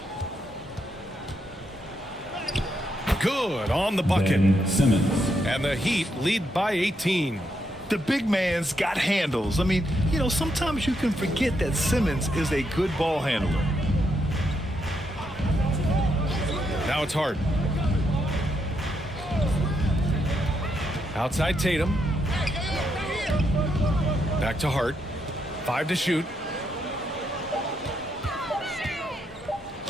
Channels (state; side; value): normal; both; correlation 0.79